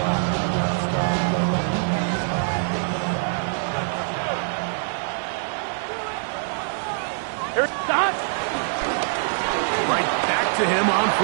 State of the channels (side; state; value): left; silent; digital silence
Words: Here's Scott. Right back to him on